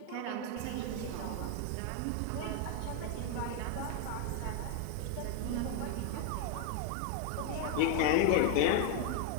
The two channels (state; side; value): different; both; correlation 0.01